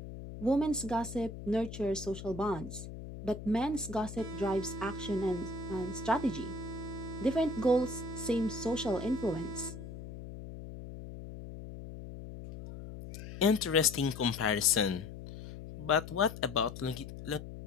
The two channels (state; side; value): noise; left; hum, 11 dB below the sound